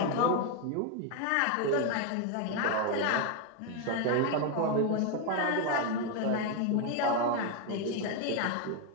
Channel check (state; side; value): different; both; correlation 0.01